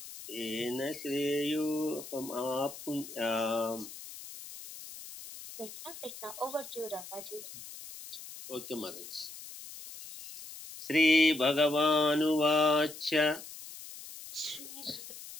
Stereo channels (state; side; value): noise; left; hiss, 13 dB below the sound